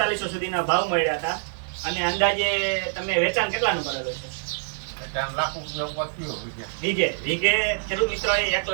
સુધીના ભાવ મળ્યા હતા. અને અંદાજે તમે વેચાણ કેટલાનું કરેલું છે? એટલે આમ લાખ રૂપિયા ઉપર થયો વીઘે ખેડૂત મિત્રોએ 1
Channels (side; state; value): left; silent; digital silence